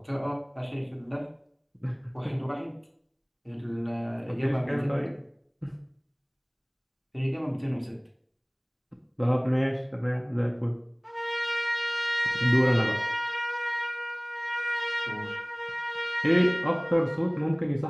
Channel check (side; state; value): both; identical; correlation 1.00